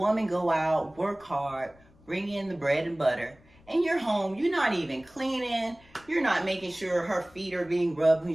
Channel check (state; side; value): noise; left; rumble, 27 dB below the sound